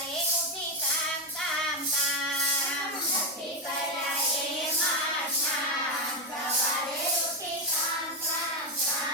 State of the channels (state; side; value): normal; both; correlation 0.08